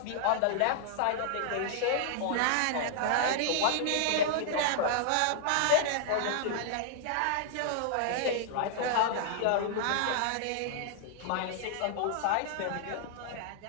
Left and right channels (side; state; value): both; different; correlation -0.01